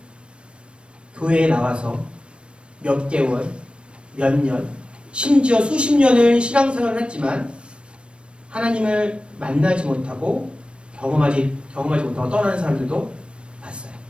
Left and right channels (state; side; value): late; left; 0.058 ms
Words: 교회에 나와서 몇 개월, 몇 년, 심지어 수십 년을 신앙생활을 했지만 하나님을 만나지 못하고 경험하지 못하고 떠나는 사람들도 봤어요.